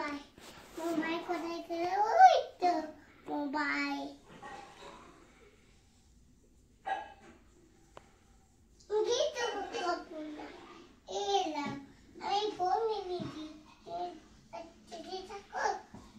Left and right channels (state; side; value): identical; both; correlation 1.00